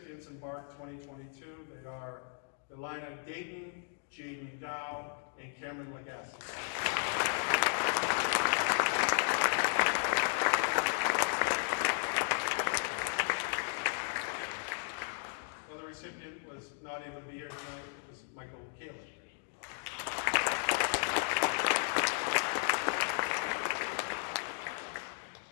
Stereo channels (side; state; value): right; silent; 55 dB below the other